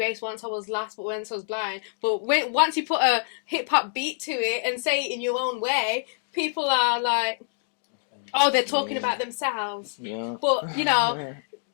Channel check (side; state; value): right; silent; digital silence